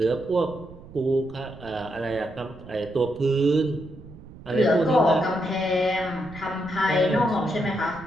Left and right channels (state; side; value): noise; right; rumble, 18 dB below the sound